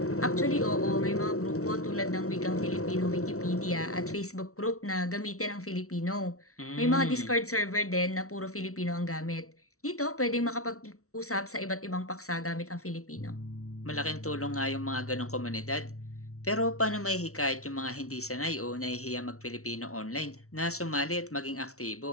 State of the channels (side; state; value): right; late; 0.64 ms